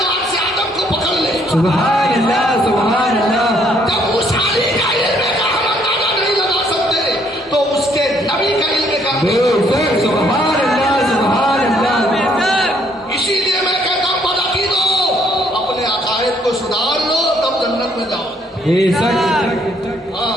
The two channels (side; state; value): both; normal; correlation 0.67